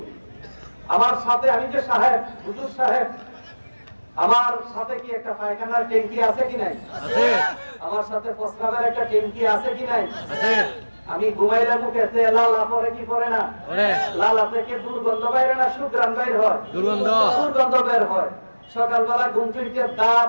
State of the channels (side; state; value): both; inverted; correlation -1.00